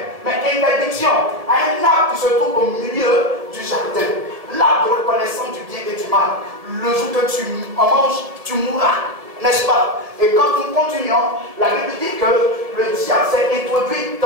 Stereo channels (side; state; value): left; late; 1.7 ms